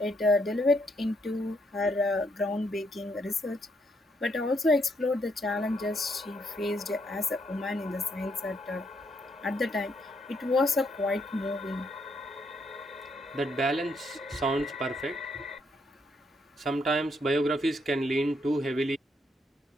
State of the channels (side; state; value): both; normal; correlation 0.74